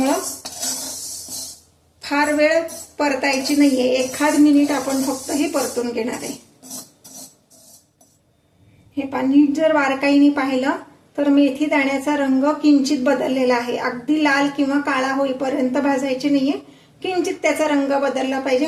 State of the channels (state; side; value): identical; both; correlation 1.00